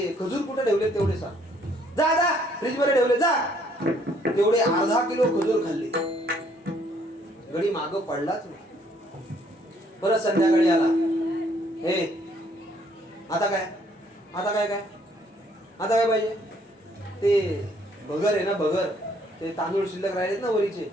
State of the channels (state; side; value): normal; both; correlation 0.65